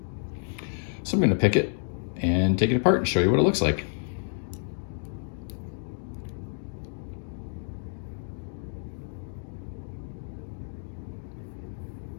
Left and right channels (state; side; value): silent; right; digital silence